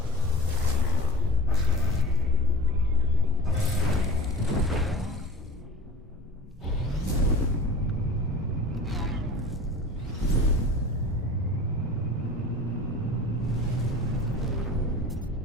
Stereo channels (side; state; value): both; normal; correlation 0.36